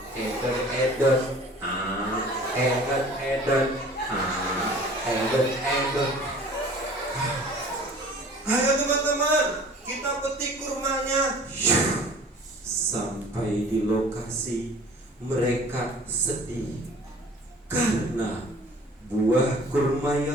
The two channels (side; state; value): both; normal; correlation 0.47